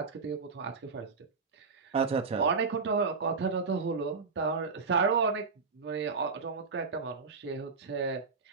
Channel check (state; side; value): quieter; left; 4.8 dB